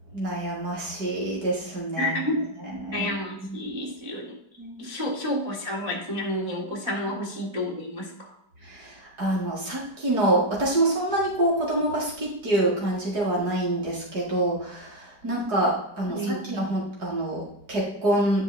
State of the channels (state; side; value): late; left; 4.8 ms